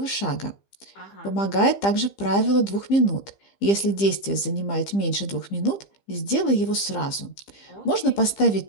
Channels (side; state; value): right; late; 15 ms